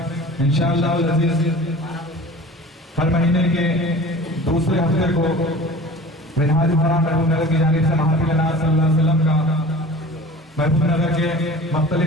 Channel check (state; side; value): normal; both; correlation 0.41